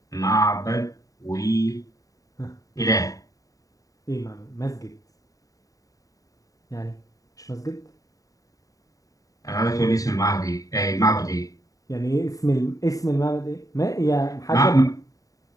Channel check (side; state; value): right; late; 0.16 ms